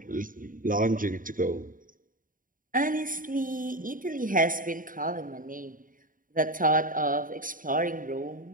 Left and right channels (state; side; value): late; left; 0.40 ms